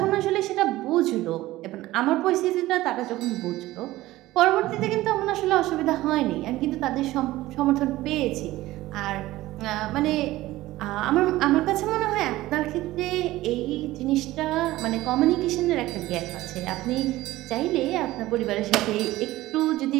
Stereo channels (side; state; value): left; quieter; 16.9 dB